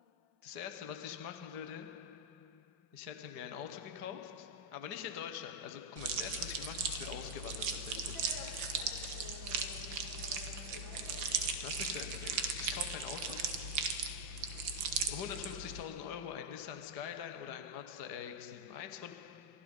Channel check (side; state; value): left; late; 5.8 ms